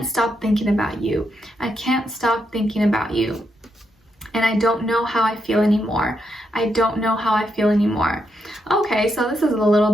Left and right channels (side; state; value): both; normal; correlation 0.81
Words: stop thinking about you. I can't stop thinking about you. And I don't know how I feel anymore. I don't know how I feel anymore. Okay, so this is a